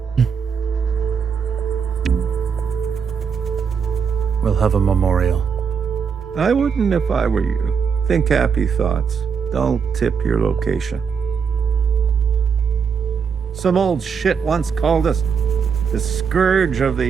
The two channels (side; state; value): left; quieter; 6.4 dB